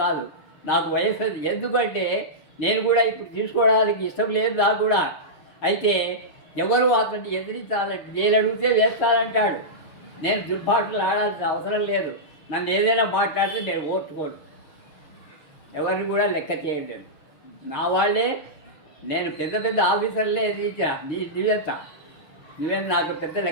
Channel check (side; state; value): right; late; 6.7 ms